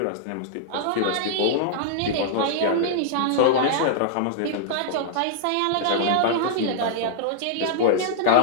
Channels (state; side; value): different; both; correlation -0.01